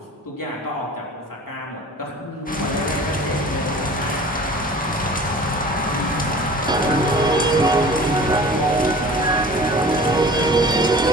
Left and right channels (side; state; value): both; normal; correlation 0.43